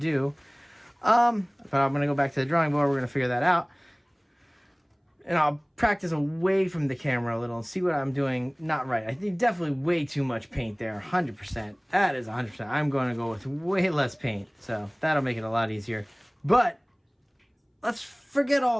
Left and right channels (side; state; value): both; identical; correlation 1.00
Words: But I'm going to go back to the drawing board. We're going to figure that out. And I'll practice away from the camera a little and see what I'm doing not right. I think definitely way too much paint there, 100%. That is 100%. I'm going to go with way less paint, so that'll make it a lot easier. But let's forget